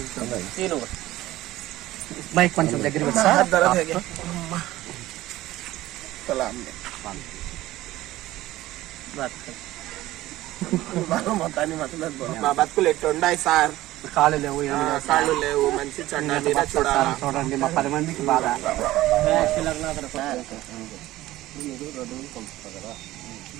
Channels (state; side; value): quieter; left; 16.3 dB